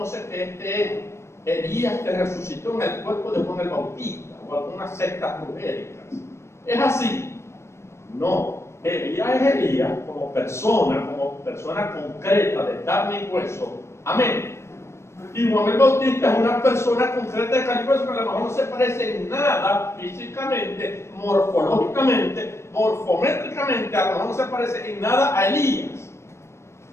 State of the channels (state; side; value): late; right; 0.13 ms